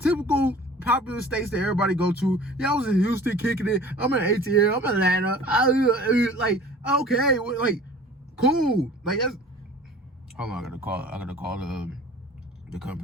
typical popular states that everybody go to. Yeah, I was in Houston kicking it. I'm in ATL. I'm in Atlanta. Like, okay, like, cool. Like, that's. Hold on, I gotta call the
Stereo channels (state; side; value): normal; both; correlation 0.45